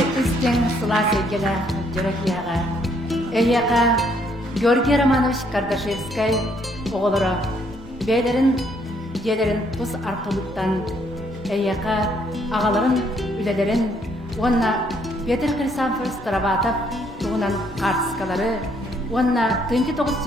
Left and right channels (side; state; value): both; normal; correlation 0.69